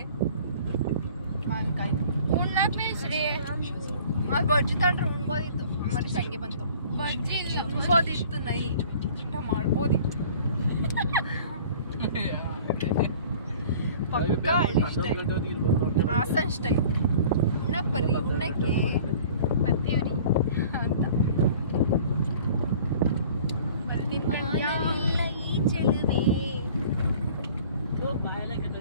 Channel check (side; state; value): both; inverted; correlation -0.48